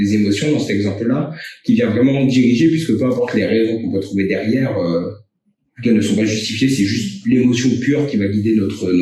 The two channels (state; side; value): identical; both; correlation 1.00